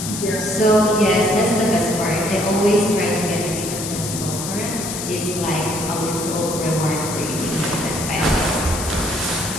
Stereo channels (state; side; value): noise; left; hiss, 6 dB below the sound